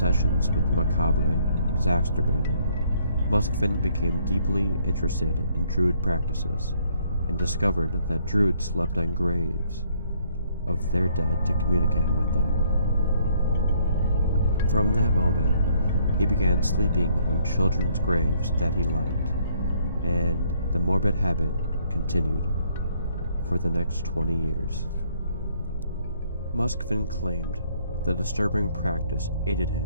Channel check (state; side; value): inverted; both; correlation -0.67